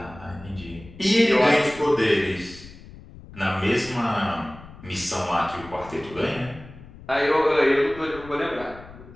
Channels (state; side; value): noise; left; rumble, 18 dB below the sound